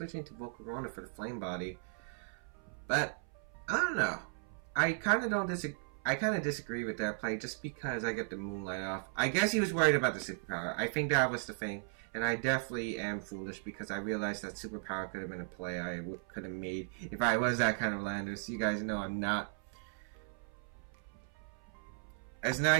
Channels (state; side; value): silent; left; 53 dB below the other